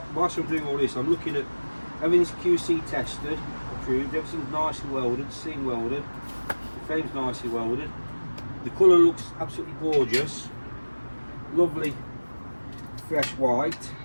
Whilst I'm doing all this, I'm looking at everything's QC tested, approved, everything's nicely welded, seam welded, the frame's nicely welded. The colour looks absolutely gorgeous, lovely fresh white.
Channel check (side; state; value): both; inverted; correlation -1.00